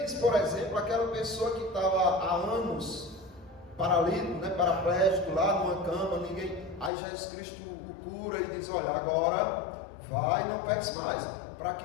disse, por exemplo, aquela pessoa que estava há anos paralítico, né, paraplégico, lá numa cama, ninguém. Aí Jesus Cristo o cura e diz: olha, agora vai e não peques mais, para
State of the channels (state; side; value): drops out; right; at 6.9 s